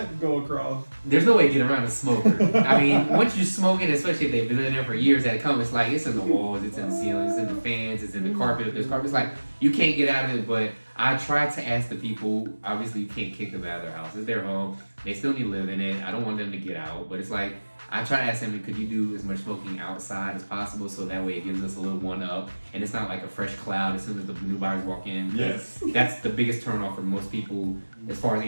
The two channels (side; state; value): both; inverted; correlation -1.00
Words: go across. There's no way to get around a smoker. I mean, once you're smoking, especially if they've been in there for years at a come, it's like, it's in the walls, it's in the ceilings, it's in the fans, it's in the carpet. If there's carpet, it's like, you can't get out of it. But I try to ask the people, obviously you can't kick them out of their house. It's their home. They still need to live in it. I don't want them to get out. But it's like, I try to ask them, could you do as much smoking outside as possible, so that way it gives us a little one up, and it's not like a fresh cloud as soon as the new buyers walk in. Yes. That's the biggest turn off for most people as far as